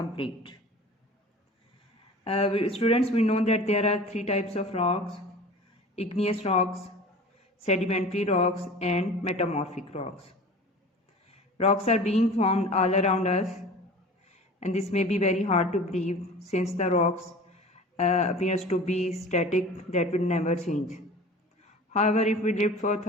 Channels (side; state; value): both; normal; correlation 0.40